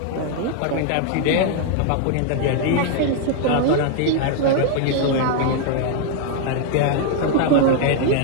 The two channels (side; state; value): both; different; correlation 0.00